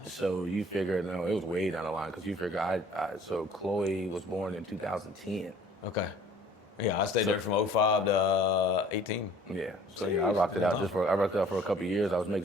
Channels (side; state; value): both; normal; correlation 0.53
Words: So you figured, no, it was way down the line because you figure so Chloe was born in 2010. Okay. Yeah, I stayed there from 2005 to 18. Yeah. So I rocked it out for a couple of years. I was